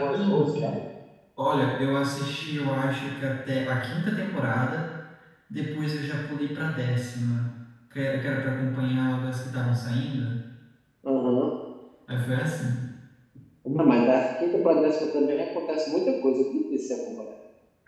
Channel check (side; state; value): both; identical; correlation 1.00